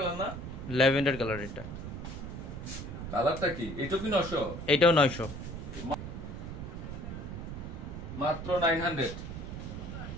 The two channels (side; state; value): right; noise; rumble, 7 dB below the sound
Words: না? Lavender colour. এটা কালারটা কি? এটা কি 900? এটাও 900। মাত্র 900।